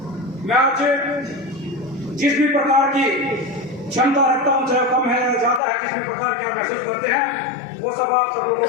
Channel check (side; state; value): right; drops out; at 5.6 s